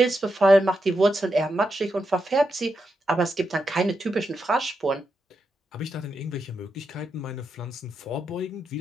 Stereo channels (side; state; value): both; normal; correlation 0.85